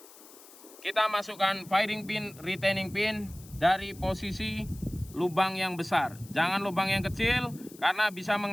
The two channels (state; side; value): noise; left; hiss, 21 dB below the sound